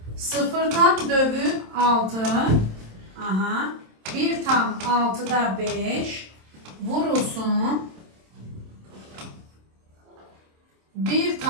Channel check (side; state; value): left; late; 27 ms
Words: 0 tam dövü 6. Aha. 1 tam 6'da 5 vurulsun. 1